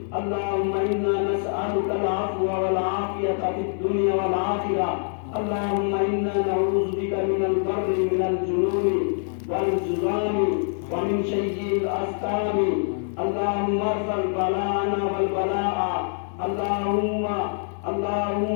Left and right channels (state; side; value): silent; right; 62 dB below the other